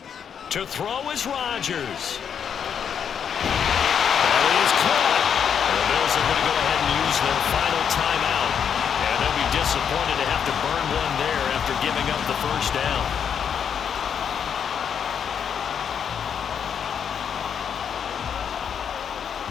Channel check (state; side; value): quieter; right; 7.7 dB